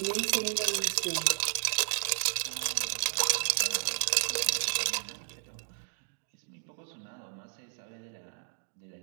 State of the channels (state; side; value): silent; left; digital silence